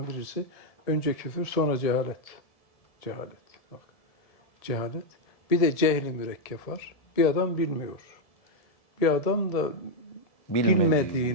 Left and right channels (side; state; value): right; late; 1.7 ms